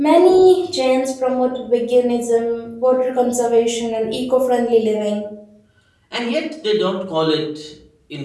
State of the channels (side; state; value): both; identical; correlation 1.00